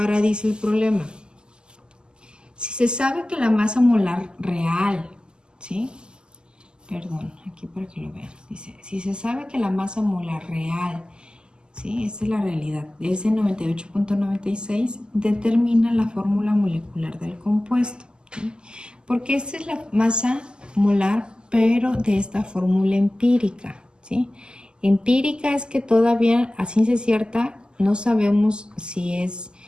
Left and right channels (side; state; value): left; late; 0.047 ms